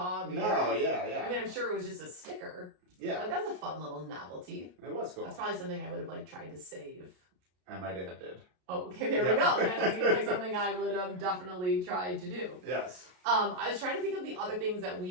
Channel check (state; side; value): late; left; 33 ms